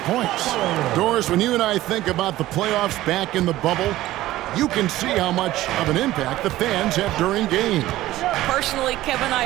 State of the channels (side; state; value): left; quieter; 15.8 dB